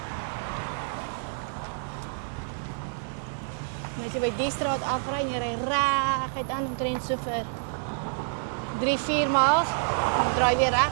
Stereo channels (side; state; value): left; silent; digital silence